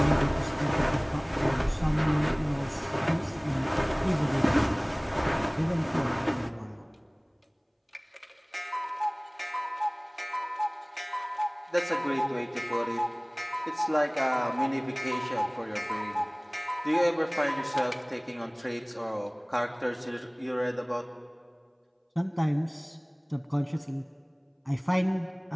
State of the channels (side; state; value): both; identical; correlation 1.00